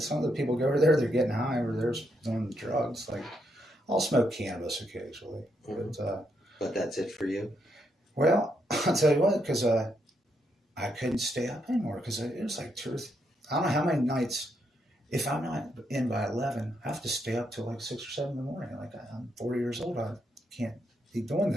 people go over there, they're getting high over there doing drugs. Like, I'll smoke cannabis occasionally. But that's it for you? Well, I'll tell you what, because I couldn't stay up anymore because it was like I don't know how many nights, if I'm not in by 11, I have to stay up till like 6 or 7 in the morning. Like, I'm 40 years old. I can't be doing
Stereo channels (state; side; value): normal; both; correlation 0.79